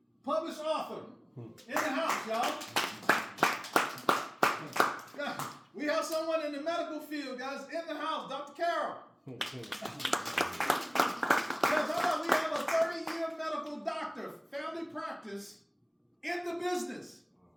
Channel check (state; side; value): identical; both; correlation 1.00